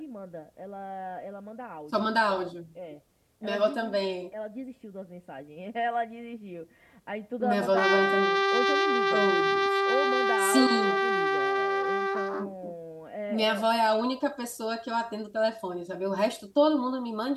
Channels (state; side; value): identical; both; correlation 1.00